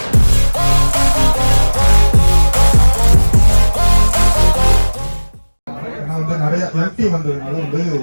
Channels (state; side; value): inverted; both; correlation -1.00